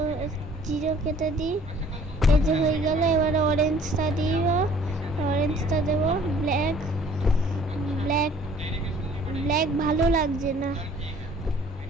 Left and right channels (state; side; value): normal; both; correlation 0.54